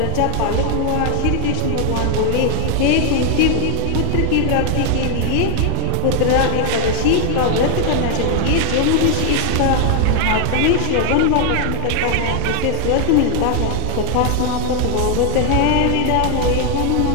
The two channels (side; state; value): both; different; correlation 0.00